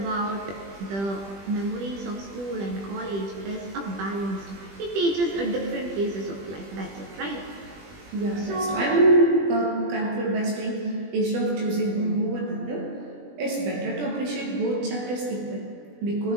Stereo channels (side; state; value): left; late; 20 ms